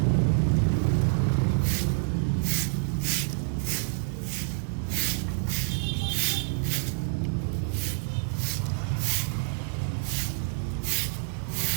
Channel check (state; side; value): silent; left; 60 dB below the other